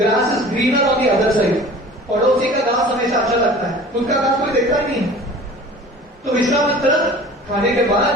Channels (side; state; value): both; normal; correlation 0.43